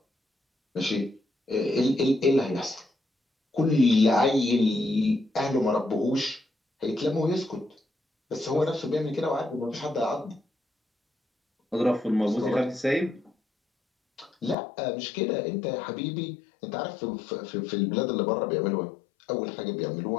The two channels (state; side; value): drops out; right; at 14.6 s